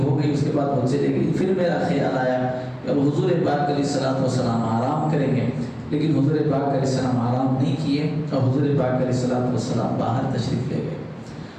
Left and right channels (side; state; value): both; identical; correlation 1.00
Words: ہو گئی، اس کے بعد وہ چلے گئی۔ پھر میرا خیال آیا کہ اب حضور پاک علیہ السلام آرام کریں گے، لیکن حضور پاک علیہ السلام آرام نہیں کیے اور حضور پاک علیہ السلام باہر تشریف لے گئے۔